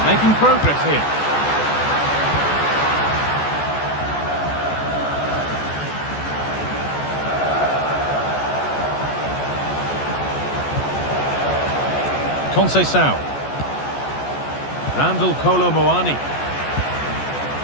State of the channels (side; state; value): right; late; 14 ms